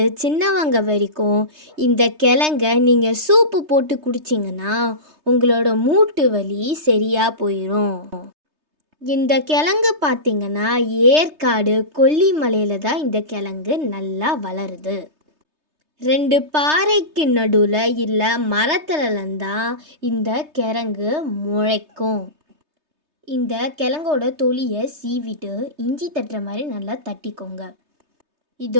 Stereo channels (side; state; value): left; late; 3.3 ms